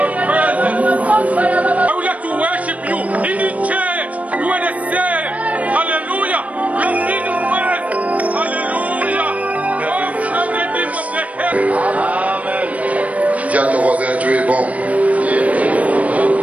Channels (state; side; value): late; left; 0.068 ms